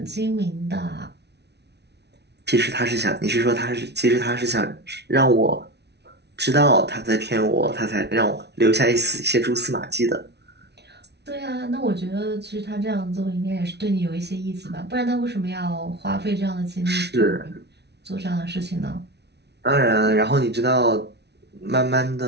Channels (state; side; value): late; left; 0.49 ms